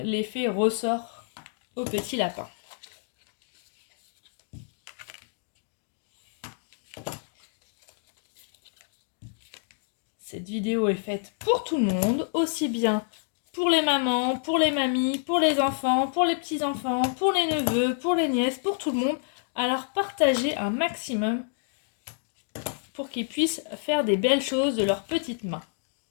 ressort au petit lapin. Cette vidéo est faite pour tout le monde, aussi bien pour les mamans, pour les mamies, pour les enfants, pour les petits-enfants, pour les neveux, pour les nièces, pour tout le monde. Alors partagez un maximum pour qu'ils puissent faire des belles choses de leurs petites mains.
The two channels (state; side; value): silent; right; digital silence